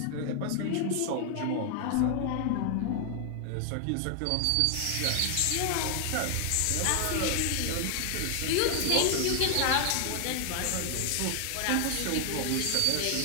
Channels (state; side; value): different; both; correlation 0.00